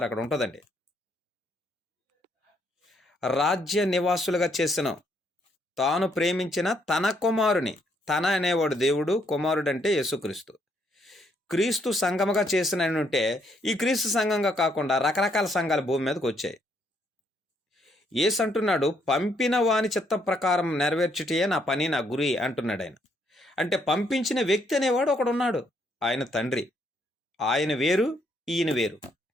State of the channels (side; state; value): both; normal; correlation 0.71